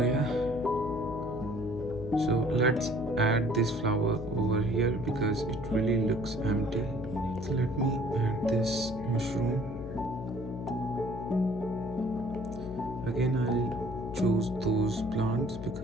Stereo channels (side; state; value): left; noise; hum, 9 dB below the sound